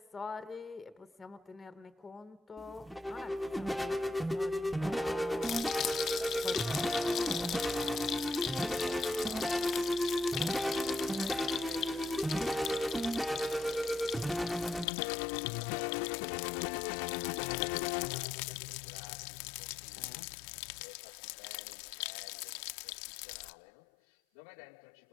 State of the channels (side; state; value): right; drops out; at 14.9 s